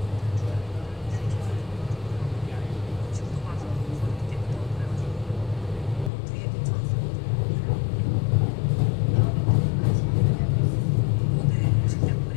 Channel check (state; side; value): drops out; right; at 6.1 s